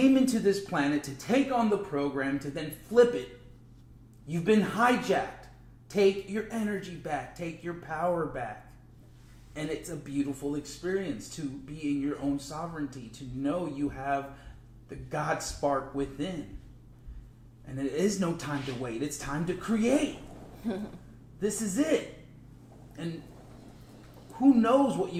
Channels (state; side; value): identical; both; correlation 1.00